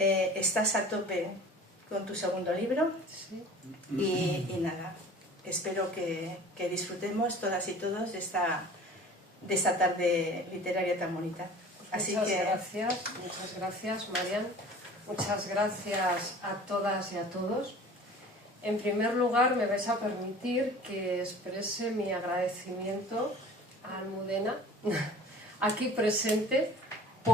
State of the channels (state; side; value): normal; both; correlation 0.44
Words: a tope con tu segundo libro y nada, espero que disfrutemos todas y todos de esta tarde literaria tan bonita. Muchas gracias, Marian. Muchas gracias a todas y a todos. En primer lugar, me vais a permitir que exprese mi agradecimiento a Almudena, aquí presente,